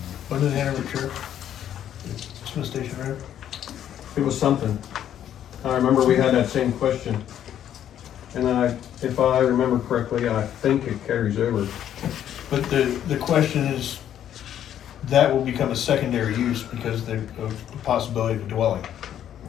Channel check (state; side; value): quieter; right; 10.5 dB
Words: when did Hanover Church? Smith Station Road? It was something. I remember we had that same question. And if I remember correctly, I think it carries over. But the question is, that will become a secondary use because of the possibility of a dwelling